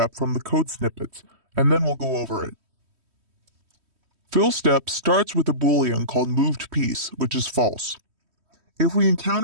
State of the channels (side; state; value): left; late; 3.1 ms